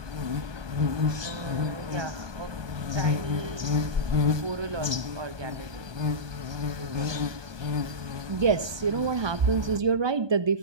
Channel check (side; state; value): left; late; 1.2 ms